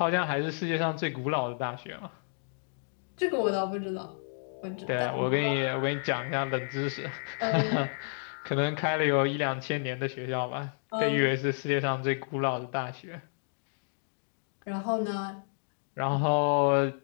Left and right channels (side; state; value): right; silent; digital silence